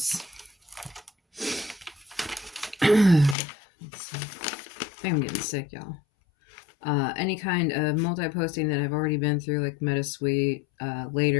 let's see. I think I'm getting sick, y'all. Any kind of multi-posting that I've already been through, like MetaSuite.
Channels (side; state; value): right; drops out; at 3.4 s